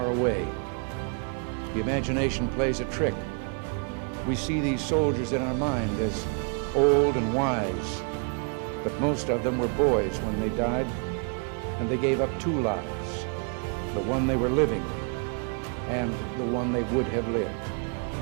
away. The imagination plays a trick. We see these soldiers in our mind as old and wise, but most of them were boys when they died, and they gave up two lives, the one they were living and the one they would have lived.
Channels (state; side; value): quieter; left; 39.3 dB